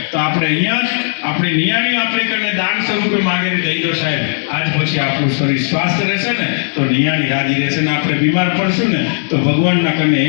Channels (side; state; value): right; silent; 70 dB below the other